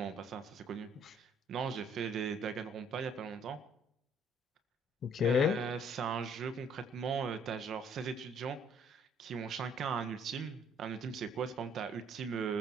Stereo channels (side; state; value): both; normal; correlation 0.61